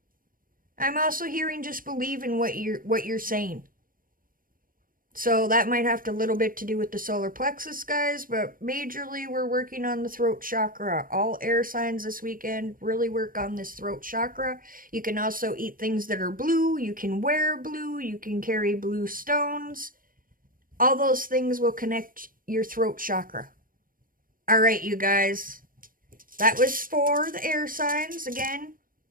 I'm also hearing just believe in what you're saying. So that might have a little bit to do with the solar plexus, guys, but majorly we're working on the throat chakra. All air signs this weekend really work on this throat chakra. You can also eat things that are blue. You can wear blue. You can carry blue stones. All those things will connect your throat chakra. All right, you guys. That was for the air signs. Again,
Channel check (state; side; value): late; left; 0.41 ms